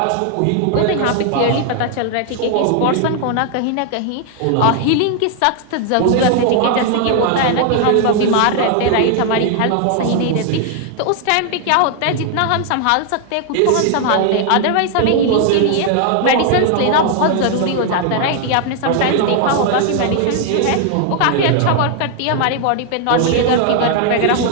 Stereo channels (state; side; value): different; both; correlation 0.00